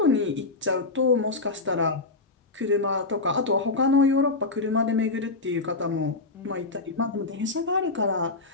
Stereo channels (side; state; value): right; quieter; 3.5 dB